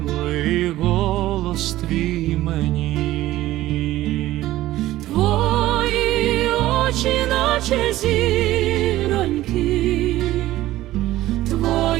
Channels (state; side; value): quieter; left; 15.6 dB